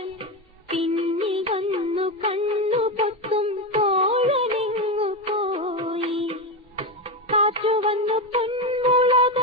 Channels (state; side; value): normal; both; correlation 0.14